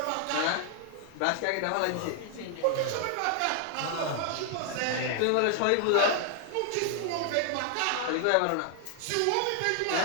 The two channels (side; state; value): both; different; correlation 0.00